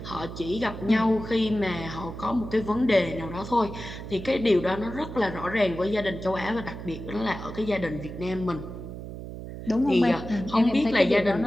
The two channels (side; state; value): right; noise; hum, 10 dB below the sound